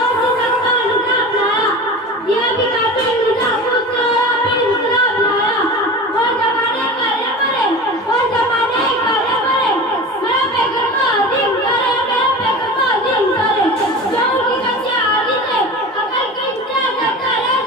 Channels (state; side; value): normal; both; correlation 0.33